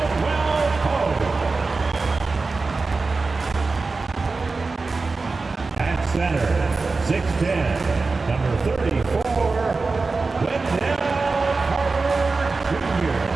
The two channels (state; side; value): quieter; left; 3.9 dB